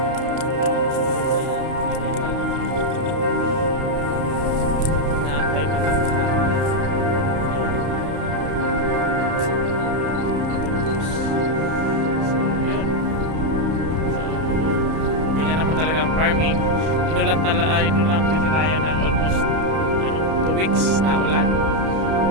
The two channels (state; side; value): late; left; 31 ms